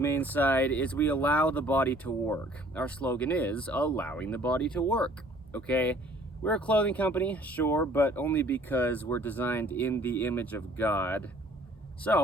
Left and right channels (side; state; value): both; normal; correlation 0.55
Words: side is we allow the body to work. Our slogan is allowing the body to work. Okay, we're a clothing company, sure, but only because we're designed in the image of God.